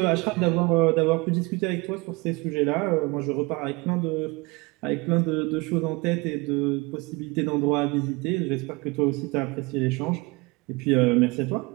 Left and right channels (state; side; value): quieter; left; 25.6 dB